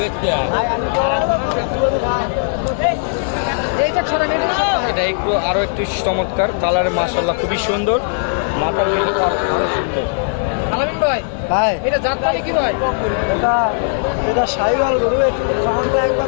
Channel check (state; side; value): silent; right; digital silence